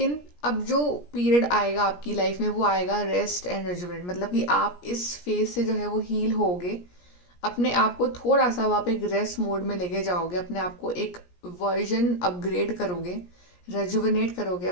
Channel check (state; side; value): late; right; 17 ms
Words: अब जो पीरियड आएगा आपकी लाइफ में वो आएगा रेस्ट एंड रिजुवेट, मतलब कि आप इस फेज से जो है वो हील होगे, अपने आप को थोड़ा सा आप एक रेस्ट मोड में लेके जाओगे, अपने आप को एक वर्जन अपग्रेड करोगे, रेजुवेनेट करोगे